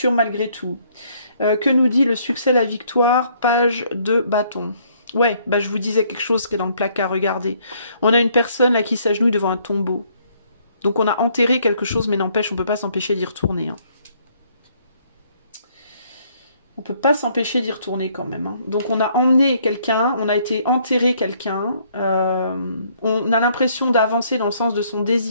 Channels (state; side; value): inverted; both; correlation -0.66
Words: malgré tout. Que nous dit le succès, la victoire? Page de bâton. Ouais, bah je vous disais quelque chose qui est dans le placard, regardez. On a une personne là qui s'agenouille devant un tombeau. Donc on a enterré quelque chose, mais n'empêche, on peut pas s'empêcher d'y retourner. Hein. On peut pas s'empêcher d'y retourner quand même. Hein. Donc on a emmené quelqu'un, on a été enterrer quelqu'un. On a l'impression d'avancer dans le sens de son